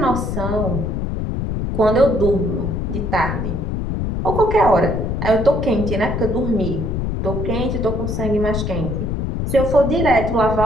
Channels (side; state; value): left; noise; rumble, 2 dB below the sound